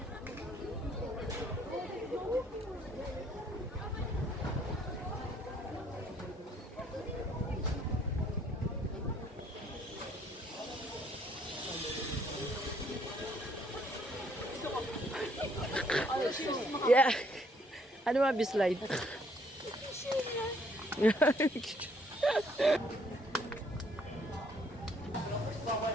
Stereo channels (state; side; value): normal; both; correlation 0.65